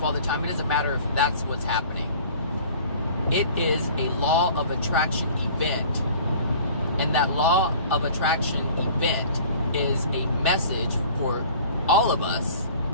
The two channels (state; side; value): inverted; both; correlation -0.47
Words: all the time. It doesn't matter if that's what's happening. It is a law of attraction event. And that law of attraction event is a message for all of us